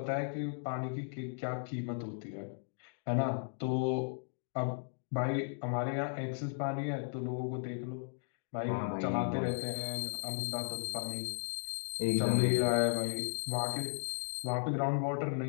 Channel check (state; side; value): silent; right; digital silence